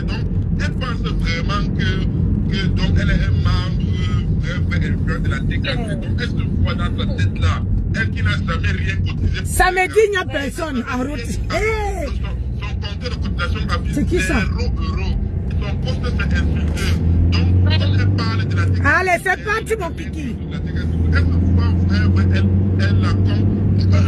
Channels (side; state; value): both; identical; correlation 1.00